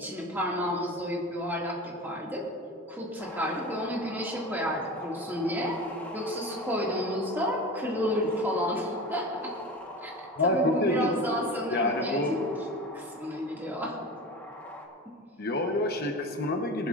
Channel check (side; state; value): both; normal; correlation 0.32